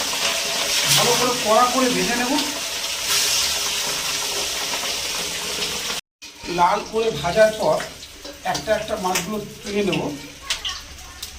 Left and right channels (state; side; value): identical; both; correlation 1.00